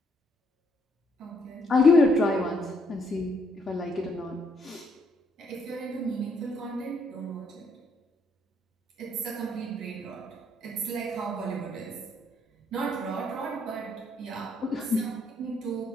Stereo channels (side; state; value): both; normal; correlation 0.71